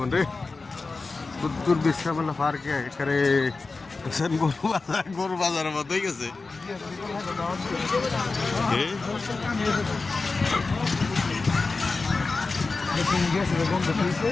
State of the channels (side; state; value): right; quieter; 3.9 dB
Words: রে উত্তর বিশ্রামেলা পার্কে একেবারে দেখছেন গরু বাজারের মতো হয়ে গেছে